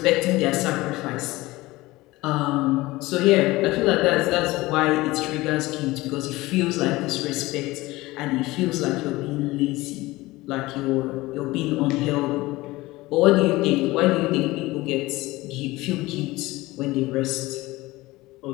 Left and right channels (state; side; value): quieter; right; 19.7 dB